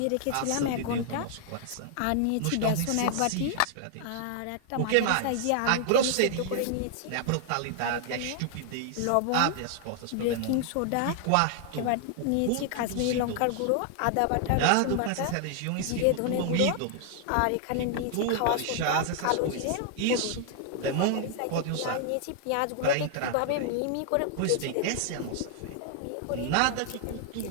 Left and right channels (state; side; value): different; both; correlation 0.00